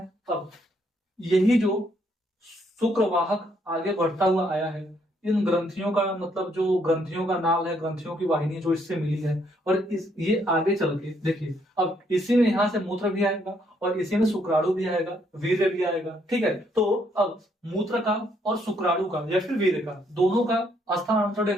अब यही जो शुक्रवाहक आगे बढ़ता हुआ आया है, इन ग्रंथियों का मतलब जो ग्रंथियों का नाल है, ग्रंथियों की वाहिनी जो इससे मिली है, और इस ये आगे चल के देखिए, अब इसी में यहां से मूत्र भी आएगा और इसी में शुक्राणु भी आएगा, वीर्य भी आएगा, ठीक है। तो अब मूत्र का और शुक्राणु का या फिर वीर्य का, दोनों का स्थानांतरण या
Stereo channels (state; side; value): normal; both; correlation 0.71